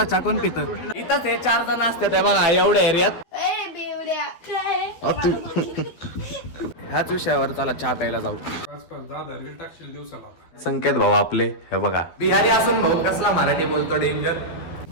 चहा कोण पितं. इथंच हे 4 जण असतात बघा एवढ्या एरियात. ह्याच विषयावर चला चहा प्यायला जाऊ. संकेत भाऊ आपले हे बघा बिहारी असून भाऊ कसला मराठी बोलतो डेंजर.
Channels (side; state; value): right; late; 12 ms